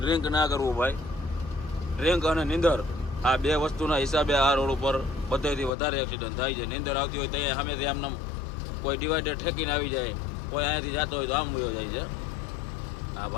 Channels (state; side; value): drops out; right; at 5.7 s